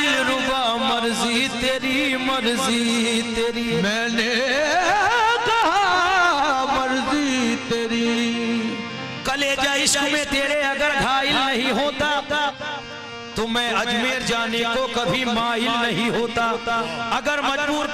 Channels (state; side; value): identical; both; correlation 1.00